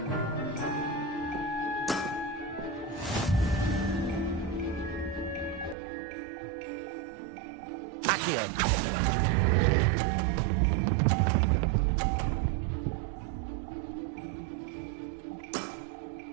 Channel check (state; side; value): drops out; left; at 5.8 s